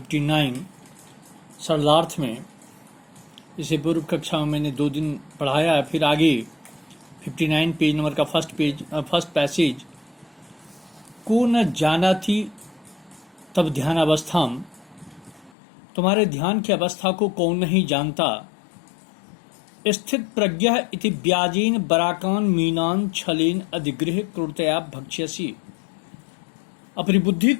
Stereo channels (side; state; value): right; drops out; at 15.5 s